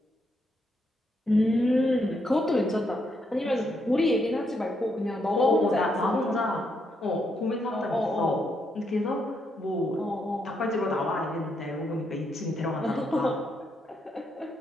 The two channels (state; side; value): normal; both; correlation 0.78